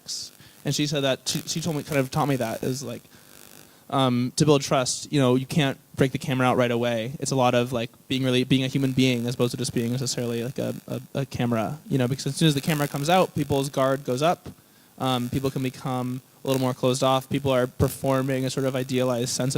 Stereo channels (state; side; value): identical; both; correlation 1.00